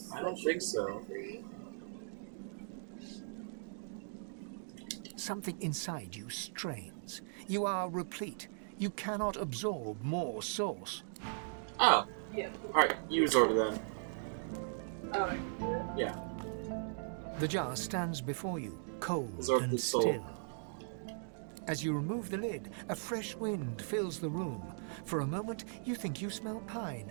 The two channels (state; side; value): silent; left; digital silence